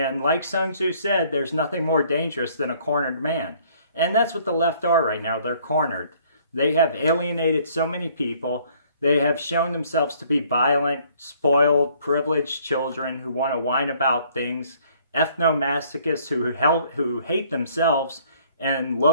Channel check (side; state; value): both; inverted; correlation -0.60